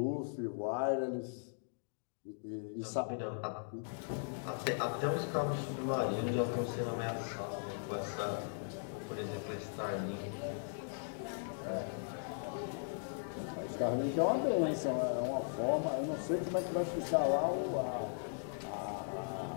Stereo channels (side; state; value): right; silent; digital silence